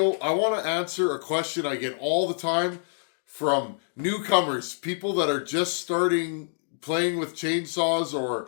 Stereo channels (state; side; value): silent; right; digital silence